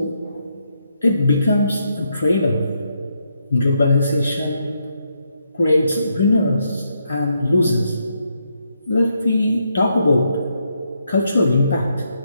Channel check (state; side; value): inverted; both; correlation -0.78